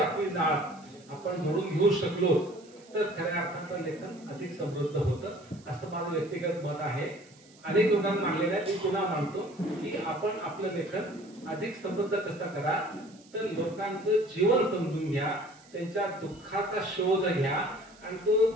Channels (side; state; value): right; noise; hiss, 26 dB below the sound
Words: नाळ आपण जोडून घेऊ शकलो तर खऱ्या अर्थानं लेखन अधिक समृद्ध होतं असं माझं व्यक्तिगत मत आहे. अनेक लोकांना मानलेलं आहे, मी पुन्हा मानतो की आपण आपलं लेखन अधिक समृद्ध कसं करा तर लोकांचं जीवन समजून घ्या, त्यांच्या दुःखाचा शोध घ्या आणि तो